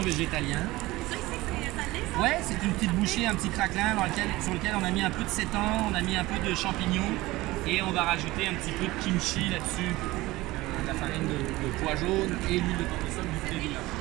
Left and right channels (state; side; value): quieter; left; 19.3 dB